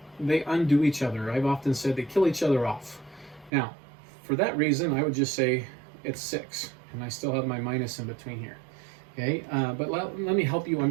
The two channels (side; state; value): left; drops out; at 3.5 s